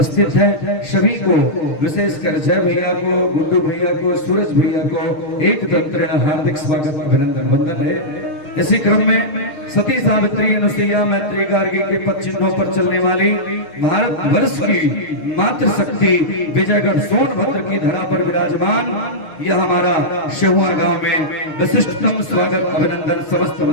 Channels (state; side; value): late; right; 6.5 ms